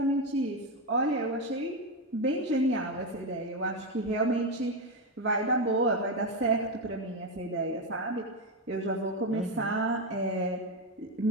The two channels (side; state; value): both; normal; correlation 0.10